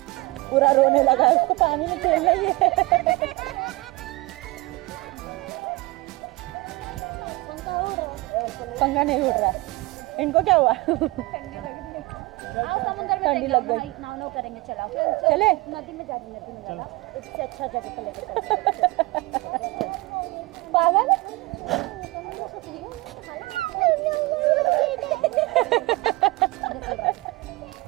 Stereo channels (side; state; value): left; quieter; 22.8 dB